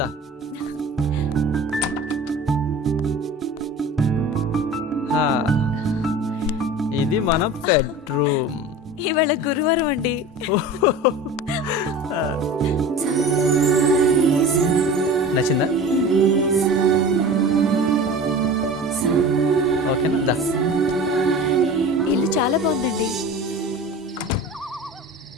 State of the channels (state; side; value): normal; both; correlation 0.36